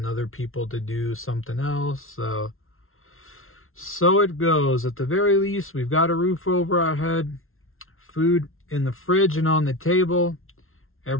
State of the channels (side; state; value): right; late; 0.61 ms